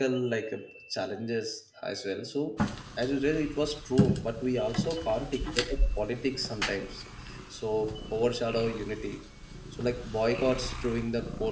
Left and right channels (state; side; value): identical; both; correlation 1.00